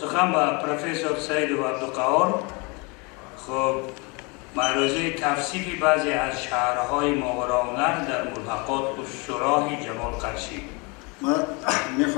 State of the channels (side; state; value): right; quieter; 29.4 dB